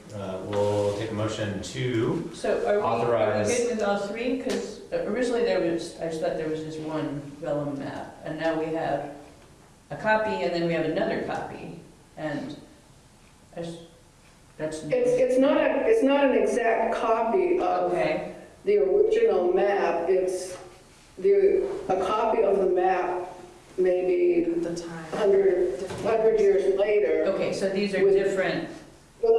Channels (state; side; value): identical; both; correlation 1.00